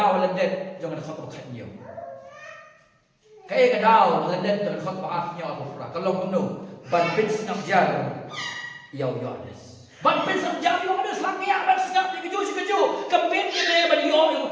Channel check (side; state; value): both; identical; correlation 1.00